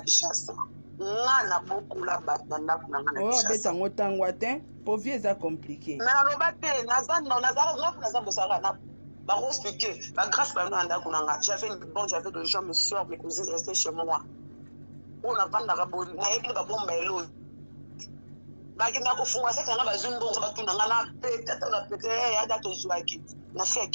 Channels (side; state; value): both; inverted; correlation -1.00